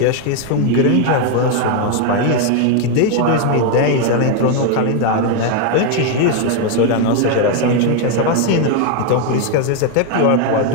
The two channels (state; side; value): different; both; correlation 0.01